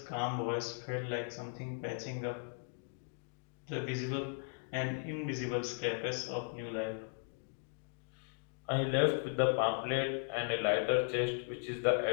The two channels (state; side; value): silent; right; 53 dB below the other